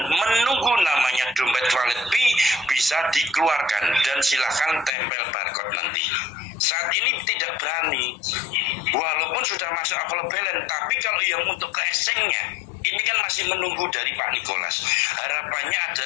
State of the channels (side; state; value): right; drops out; at 4.9 s